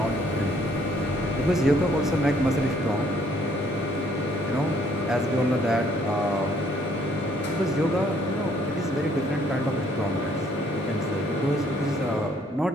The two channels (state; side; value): normal; both; correlation 0.64